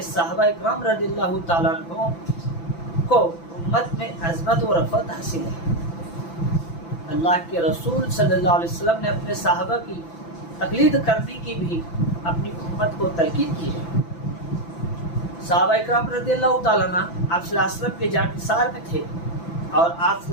صحابہ اکرام رضی اللہ تعالیٰ عنہ کو امت میں عظمت و رفعت حاصل ہے۔ اللہ کے رسول صلی اللہ علیہ وسلم نے اپنے صحابہ کی تقلید کرنے کی بھی اپنی امت کو تلقین کی ہے۔ صحابہ اکرام رضی اللہ تعالیٰ عنہ آپ صلی اللہ علیہ وسلم کے جانثار میں تھے اور آپ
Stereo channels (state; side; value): late; right; 5.9 ms